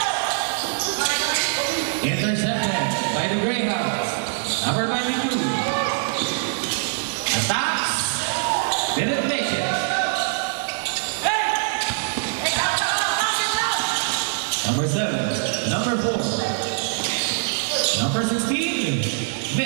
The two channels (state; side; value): silent; left; digital silence